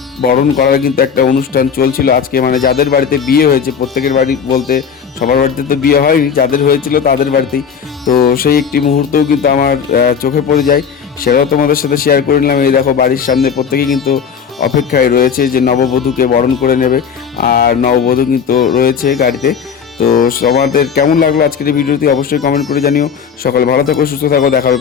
বরণ করার কিন্তু একটা অনুষ্ঠান চলছিল আজকে। মানে যাদের বাড়িতে বিয়ে হয়েছে, প্রত্যেকের বাড়ি বলতে সবার বাড়িতে তো বিয়ে হয়নি, যাদের হয়েছিল তাদের বাড়িতেই। তো সেই একটি মুহূর্তও কিন্তু আমার চোখে পড়ে যায়, সেটাও তোমাদের সাথে শেয়ার করে নিলাম। এই দেখো বাড়ির সামনে প্রত্যেকেই কিন্তু অপেক্ষায় রয়েছে যে নববধূকে বরণ করে নেবে। আর নববধূ কিন্তু রয়েছে গাড়িতে। তো তোমাদের কেমন লাগলো আজকের এই ভিডিওটি অবশ্যই কমেন্ট করে জানিও। সকালে ভালো থাকো, সুস্থ থাকো, দেখা হবে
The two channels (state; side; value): quieter; right; 6.8 dB